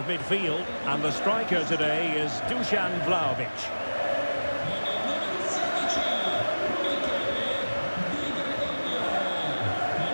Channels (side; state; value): both; inverted; correlation -1.00